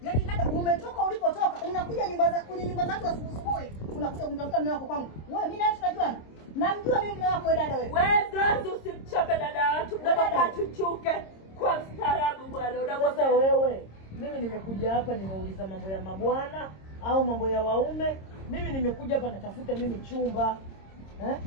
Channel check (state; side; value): late; right; 26 ms